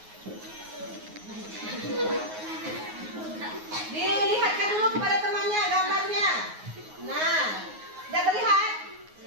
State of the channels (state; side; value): late; left; 9.5 ms